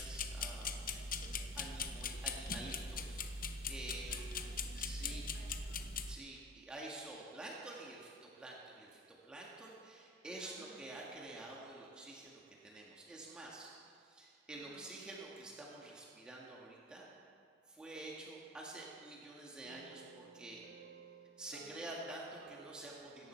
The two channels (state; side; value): normal; both; correlation 0.39